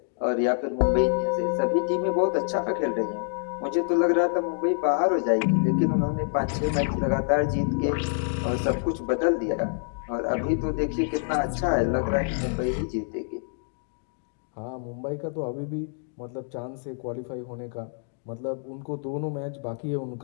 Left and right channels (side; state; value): right; silent; digital silence